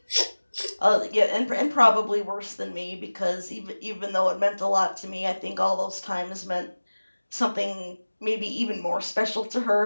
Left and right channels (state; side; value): inverted; both; correlation -1.00